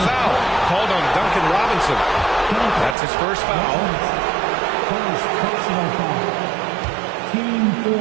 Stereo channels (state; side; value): drops out; left; at 3.0 s